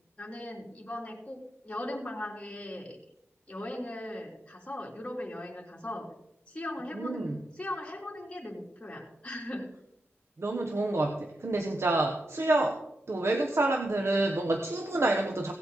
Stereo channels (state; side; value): normal; both; correlation 0.86